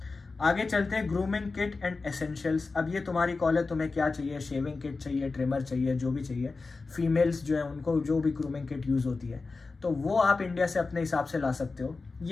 आगे चलते हैं ग्रूमिंग किट एंड एसेंशियल्स। अब ये तुम्हारी कॉल है, तुम्हें क्या चाहिए, शेविंग किट चाहिए, ट्रिमर चाहिए, जो भी चाहिए। फीमेल्स जो है उनको जो भी ग्रूमिंग किट यूज़ होती है तो वो आप इंडिया से अपने हिसाब से ला सकते हो।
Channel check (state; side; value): quieter; right; 4.0 dB